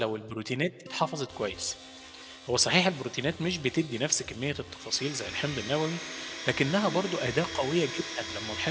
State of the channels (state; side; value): identical; both; correlation 1.00